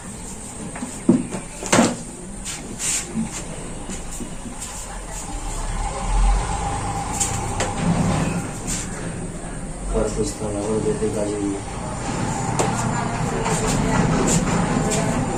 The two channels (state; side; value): identical; both; correlation 1.00